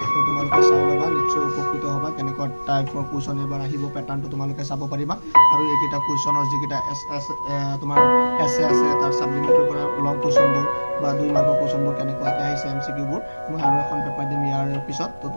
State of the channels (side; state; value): both; inverted; correlation -1.00